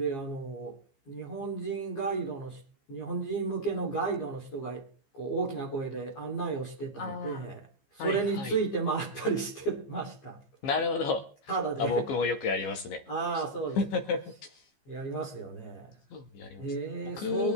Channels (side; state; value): right; late; 15 ms